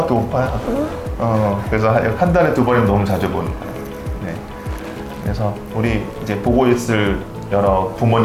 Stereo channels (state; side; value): identical; both; correlation 1.00